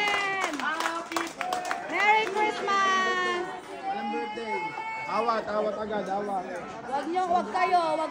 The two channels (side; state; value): both; identical; correlation 1.00